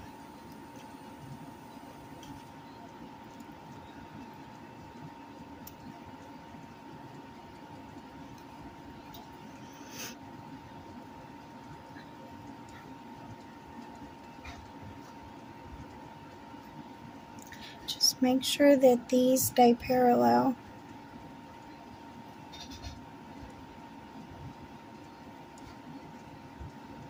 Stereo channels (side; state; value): both; identical; correlation 1.00